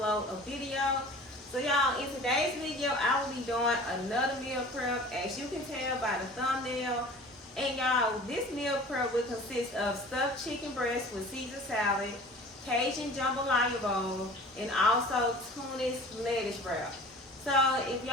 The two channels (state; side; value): normal; both; correlation 0.43